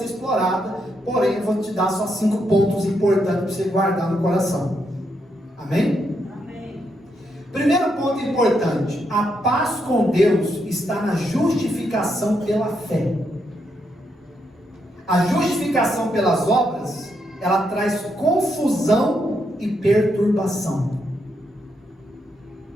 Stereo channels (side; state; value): both; normal; correlation 0.79